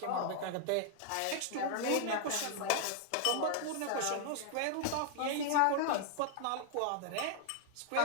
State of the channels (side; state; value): both; different; correlation -0.01